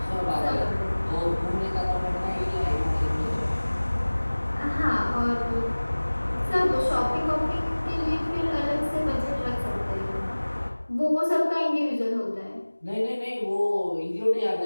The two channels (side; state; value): both; inverted; correlation -1.00